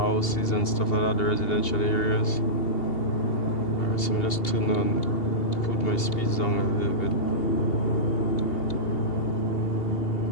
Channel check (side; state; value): right; late; 2.8 ms